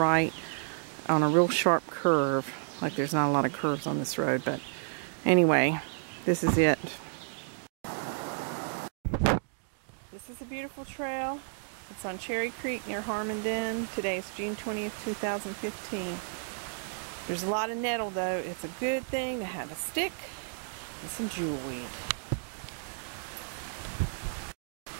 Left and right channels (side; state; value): left; silent; digital silence